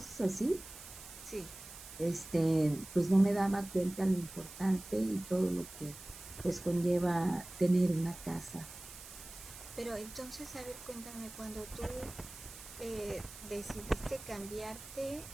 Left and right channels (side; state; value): right; noise; hiss, 15 dB below the sound